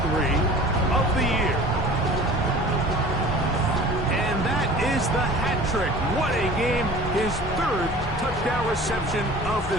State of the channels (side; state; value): both; normal; correlation 0.43